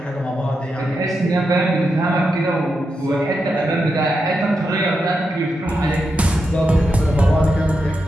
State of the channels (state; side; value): normal; both; correlation 0.86